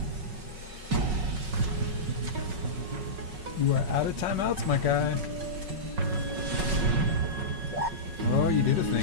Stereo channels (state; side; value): late; left; 5.4 ms